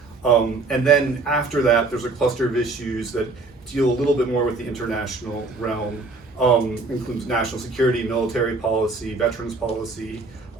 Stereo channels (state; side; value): quieter; left; 3.6 dB